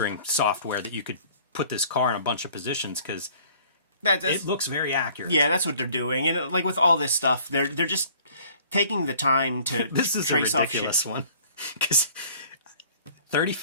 software that you could put this car in a bunch of positions, because it looks very accurate. Yeah, that's what they're doing. And like with all this stuff, they're just taking the time to this is trace a ridiculous off one. Because 30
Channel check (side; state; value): both; inverted; correlation -0.54